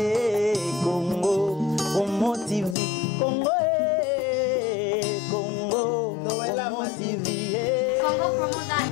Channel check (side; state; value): right; drops out; at 2.8 s